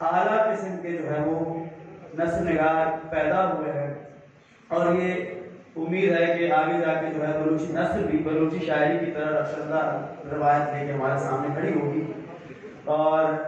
اعلیٰ قسم کے جو ہے وہ نسل نگار پیدا ہوئے ہیں، اور یہ امید ہے کہ آگے جا کے جو ہے بلوچی نسل بھی بلوچی شاعری کی طرح رخشندہ روایت لے کے ہمارے سامنے کھڑی ہوگی۔ اور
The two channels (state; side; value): identical; both; correlation 1.00